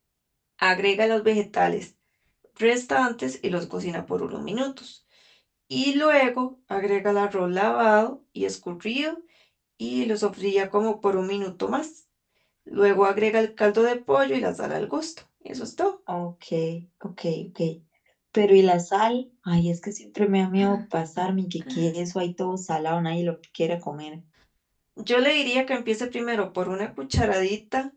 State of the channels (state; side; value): identical; both; correlation 1.00